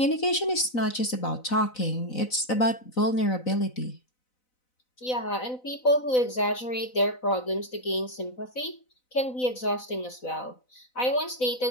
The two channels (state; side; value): late; right; 4.0 ms